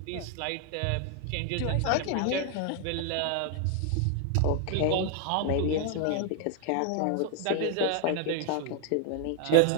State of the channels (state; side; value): different; both; correlation 0.00